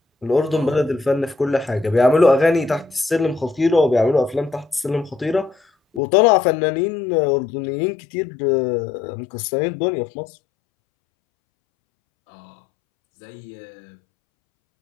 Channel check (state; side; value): drops out; right; at 6.0 s